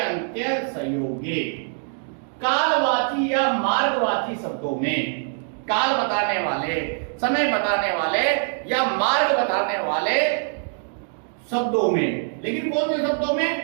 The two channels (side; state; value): left; silent; 63 dB below the other